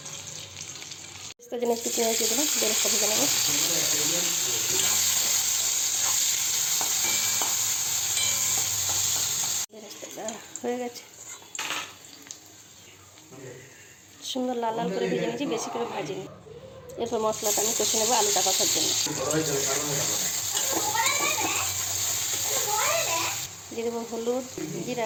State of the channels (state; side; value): identical; both; correlation 1.00